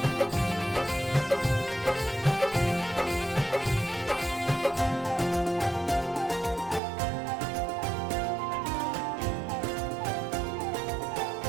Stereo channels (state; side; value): drops out; left; at 6.8 s